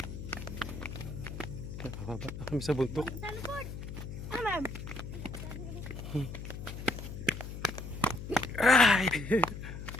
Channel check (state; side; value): noise; left; hum, 8 dB below the sound